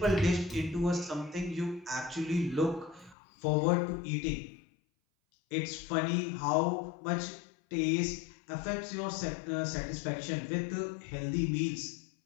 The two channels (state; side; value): drops out; right; at 3.2 s